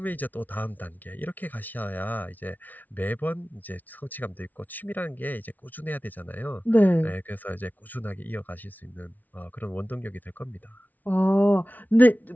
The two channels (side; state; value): right; late; 0.079 ms